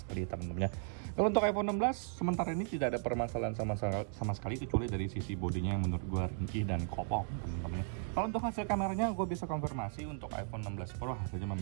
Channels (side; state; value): left; silent; 54 dB below the other